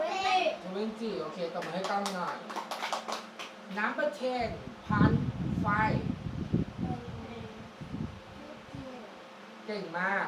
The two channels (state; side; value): identical; both; correlation 1.00